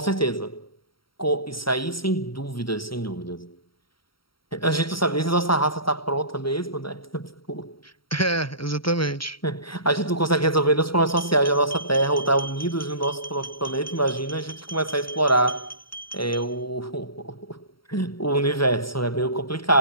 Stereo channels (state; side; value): late; right; 0.74 ms